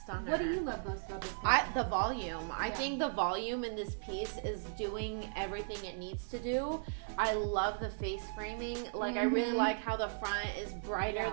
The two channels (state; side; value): silent; left; 53 dB below the other